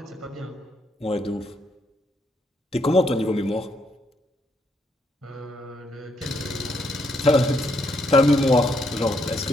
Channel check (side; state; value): both; normal; correlation 0.75